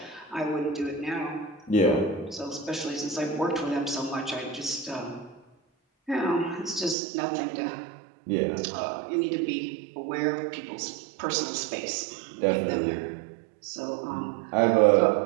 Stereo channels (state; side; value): drops out; left; at 7.0 s